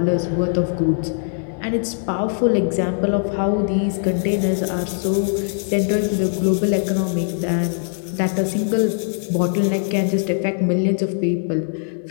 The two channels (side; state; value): right; silent; digital silence